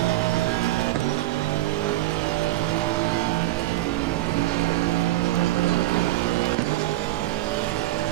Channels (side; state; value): left; quieter; 16.6 dB